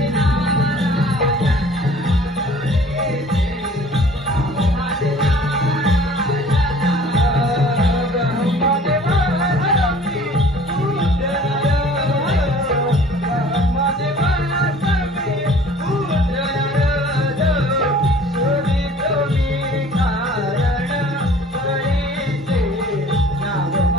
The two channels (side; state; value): both; normal; correlation 0.50